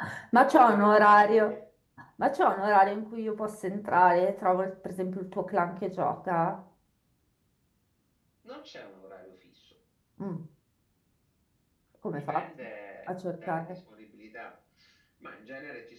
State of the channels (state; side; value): identical; both; correlation 1.00